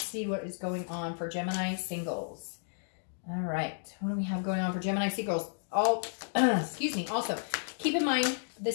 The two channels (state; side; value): silent; right; digital silence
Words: see what is going on for Gemini singles. All right, what do we have going on for Gemini singles? Excuse me. Also, keep in mind,